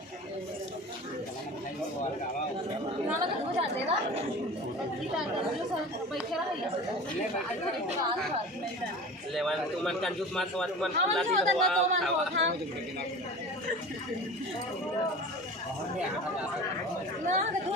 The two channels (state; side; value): normal; both; correlation 0.36